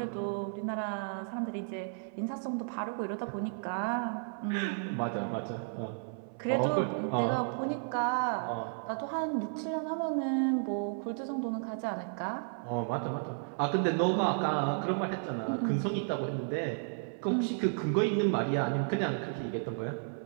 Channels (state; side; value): silent; left; 56 dB below the other